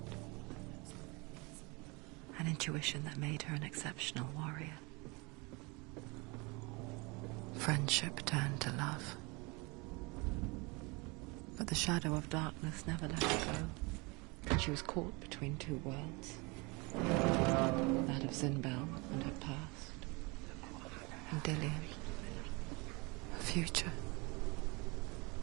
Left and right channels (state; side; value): quieter; left; 27.4 dB